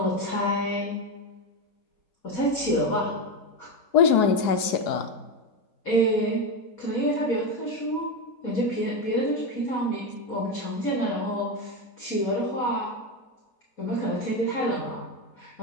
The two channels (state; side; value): late; right; 4.8 ms